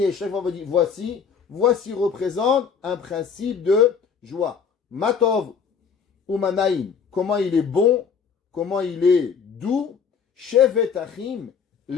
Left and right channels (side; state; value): right; quieter; 6.4 dB